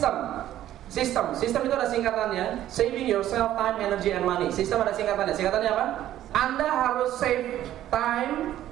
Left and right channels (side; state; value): left; quieter; 12.7 dB